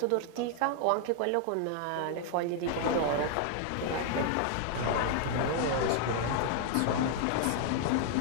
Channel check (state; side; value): different; both; correlation 0.00